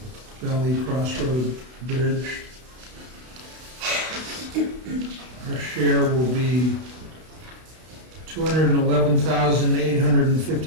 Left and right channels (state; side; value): late; left; 32 ms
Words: Valley Crossroad Bridge. Our share will be